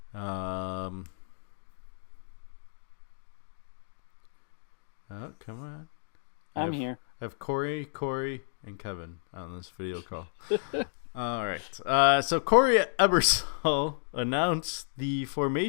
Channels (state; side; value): silent; right; digital silence